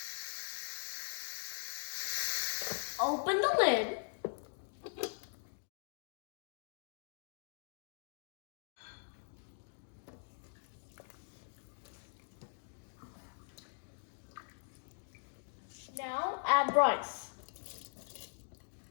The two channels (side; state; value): right; silent; digital silence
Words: Open the lid. Now add rice.